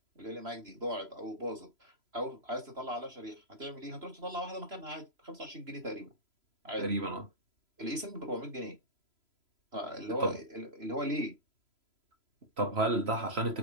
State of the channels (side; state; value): left; late; 3.0 ms